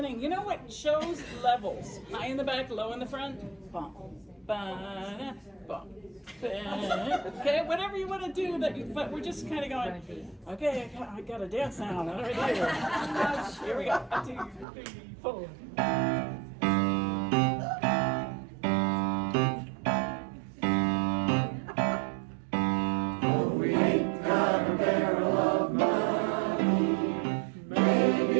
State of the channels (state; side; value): drops out; left; at 14.7 s